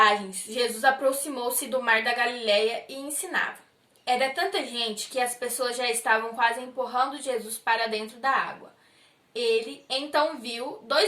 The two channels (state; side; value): identical; both; correlation 1.00